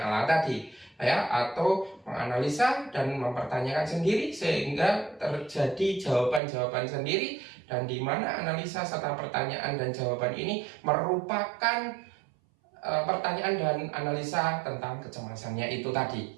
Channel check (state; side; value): drops out; left; at 6.4 s